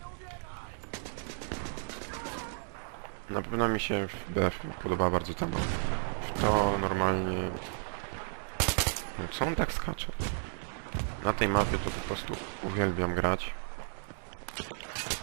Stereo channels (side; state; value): left; silent; digital silence